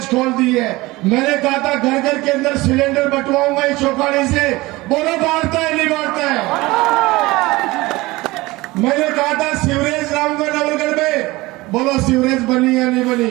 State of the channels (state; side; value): quieter; left; 20.7 dB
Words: खोल दी है। मैंने कहा था घर घर के अंदर सिलेंडर बंटवाऊंगा इस चौपाड़ी से, बोलो बांटता है नहीं बांटता है। मैंने कहा था सीवरेज लाऊंगा नवलगढ़ में, बोलो सीवरेज बनी या नहीं बनी।